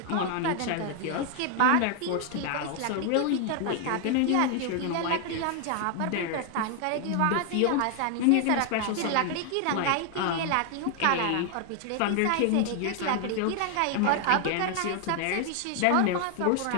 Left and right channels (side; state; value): both; different; correlation 0.00